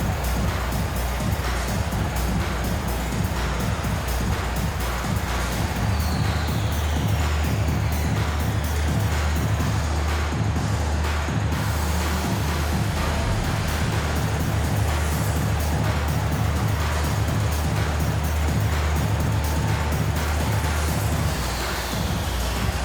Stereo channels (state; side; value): identical; both; correlation 1.00